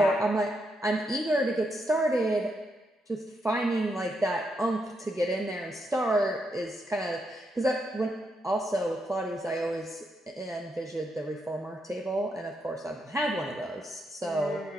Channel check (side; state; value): both; normal; correlation 0.80